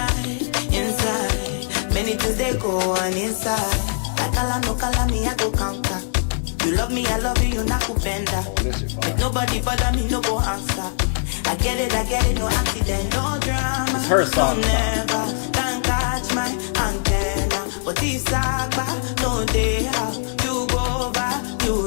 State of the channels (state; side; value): silent; right; digital silence